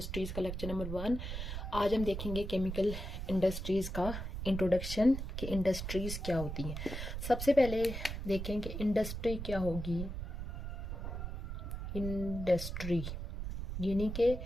का लेक्चर नंबर 1। आज हम देखेंगे केमिकल इंडस्ट्रीज़ का इंट्रोडक्शन कि इंडस्ट्रीज़ क्या होती हैं। सबसे पहले देखें कि इंडस्ट्री क्या होगी। इंडस्ट्री यानी कि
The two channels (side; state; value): right; noise; rumble, 5 dB below the sound